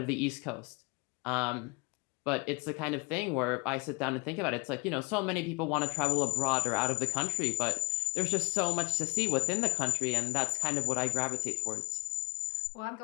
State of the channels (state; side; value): quieter; right; 30.2 dB